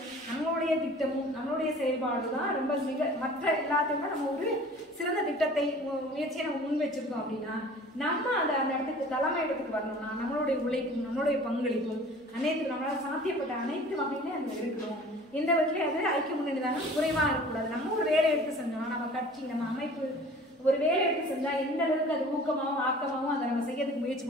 நம்மளுடைய திட்டமும் நம்மளுடைய செயல்பாடு தான் ரொம்ப மற்ற எல்லாத்தையுமே நம்ம ஒரு சிறந்த திட்டத்தை முயற்சியை நம்ம முன் வச்சிருக்கோம். அப்படின்னா நம்ம அந்த இடத்துக்கு தலைமை இடத்துக்கு வரணும்னா நம்மளுடைய உழைப்பும் நம்மளுடைய பங்களிப்பும் அனைத்து நம்மளால சாத்தியப்பட்ட அனைத்து வகையிலே அந்த இருக்கணும். எந்த வகையிலே அது ஐக்கிய முன்னணி தானே குறைவா இருக்கக்கூடாது. நம்ம ஒரு வேலை எடுத்து செஞ்சோம்னா நம்ம கட்சி நம்ம அமைப்பு ஒரு வேலை எடுத்து செஞ்சா எந்த அளவுக்கு அது ஊக்கமாகவும் ஆக்கமாகவும் அதை நம்ம செய்யறதுக்கு முயற்சி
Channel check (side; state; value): both; normal; correlation 0.46